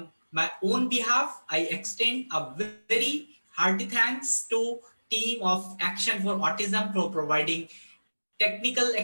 my own behalf, I extend a very hearty thanks to team of Action for Autism for providing technical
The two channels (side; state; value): both; inverted; correlation -1.00